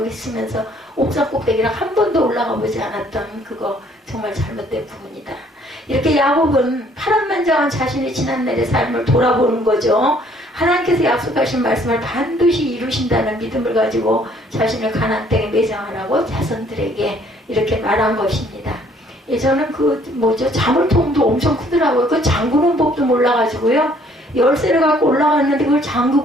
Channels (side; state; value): both; normal; correlation 0.61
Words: 있으면서 옥상 꼭대기를 한 번도 올라가 보지 않았던 그거 정말 잘못된 부분이다. 이렇게 야곱은 파란만장한 자신의 지난날의 삶을 돌아보는 거죠. 하나님께서 약속하신 말씀을 반드시 이루신다는 믿음을 가지고 자신을 가나안 땅에 매장하라고 자손들에게 이렇게 말한 것입니다. 예전엔 자물통도 엄청 크더라고요. 그 잠그는 법도 몰라가지고요. 열쇠를 갖고 올라갔는데 그걸